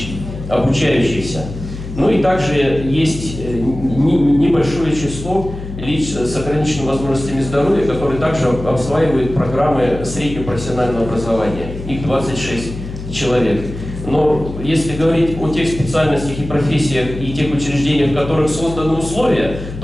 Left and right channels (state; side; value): noise; left; hum, 10 dB below the sound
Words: обучающихся. Ну и также есть небольшое число лиц с ограниченными возможностями здоровья, которые также осваивают программы среднего профессионального образования. Их 26 человек. Но если говорить о тех специальностях и профессиях и тех учреждениях, в которых созданы условия,